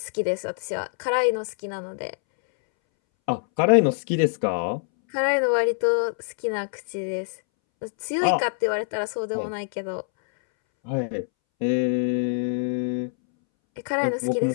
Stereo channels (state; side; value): silent; right; 62 dB below the other